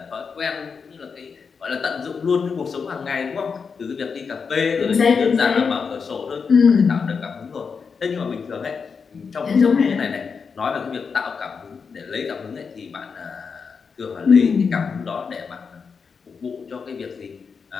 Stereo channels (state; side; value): quieter; right; 5.6 dB